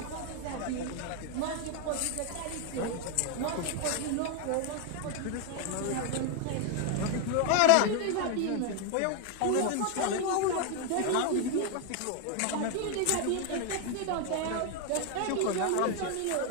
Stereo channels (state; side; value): different; both; correlation 0.01